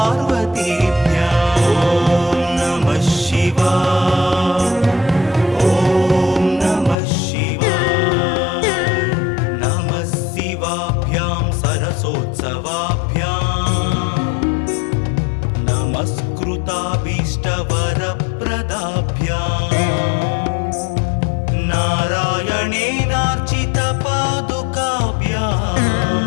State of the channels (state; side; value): drops out; right; at 7.0 s